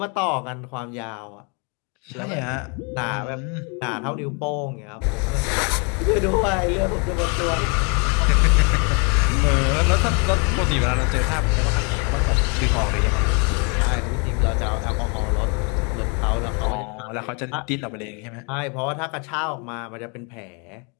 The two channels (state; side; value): quieter; right; 34.7 dB